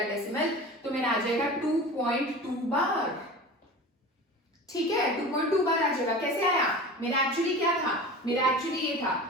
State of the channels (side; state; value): both; normal; correlation 0.35